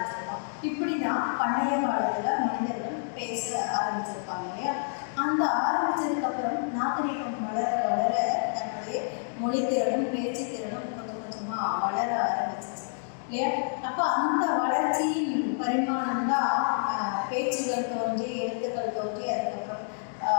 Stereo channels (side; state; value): right; silent; digital silence